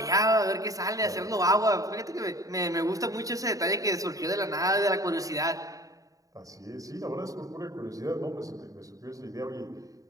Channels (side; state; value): left; late; 0.16 ms